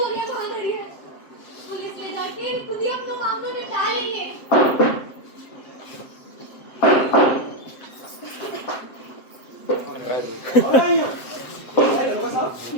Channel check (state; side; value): late; right; 7.7 ms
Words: कहाँ धरी है। पुलिस ले जाके खुद ही अपने मामलों में डाल लेंगे।